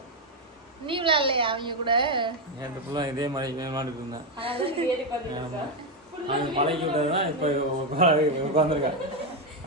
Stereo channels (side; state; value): both; normal; correlation 0.06